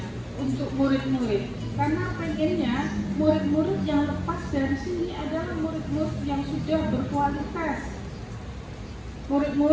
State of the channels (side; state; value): both; identical; correlation 1.00